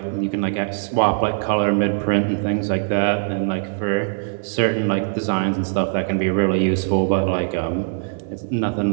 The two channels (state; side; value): silent; left; digital silence